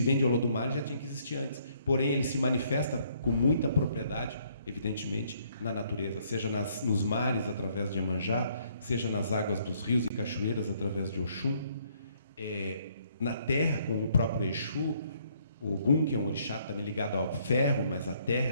vem de Olodumare já tinha que existir antes. Porém, ele se manifesta com muita propriedade, evidentemente, na natureza. Seja nos mares, através de Iemanjá, seja nas águas dos rios e cachoeiras, através de Oxum. Na terra, com o próprio Exu, o Ogum, que é um orixá também ligado ao ferro, mas a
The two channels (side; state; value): both; inverted; correlation -0.67